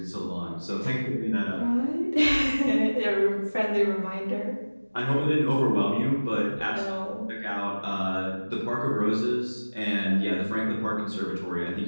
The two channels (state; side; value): inverted; both; correlation -1.00